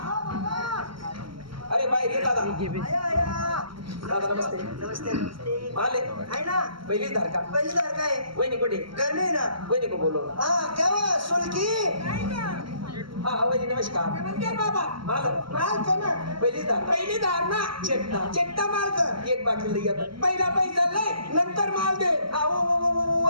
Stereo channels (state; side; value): late; left; 0.74 ms